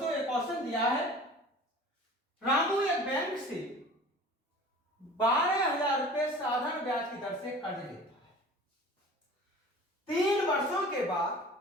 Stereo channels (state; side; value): normal; both; correlation 0.42